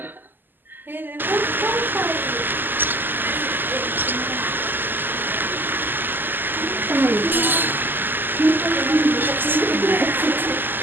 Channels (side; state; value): left; late; 0.092 ms